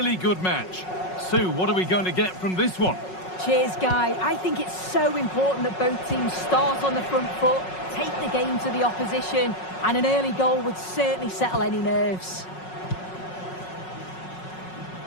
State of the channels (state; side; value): late; right; 5.4 ms